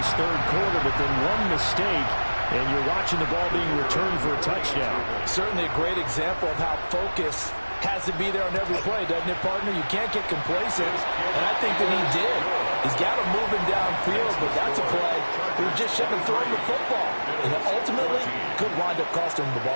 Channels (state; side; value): inverted; both; correlation -1.00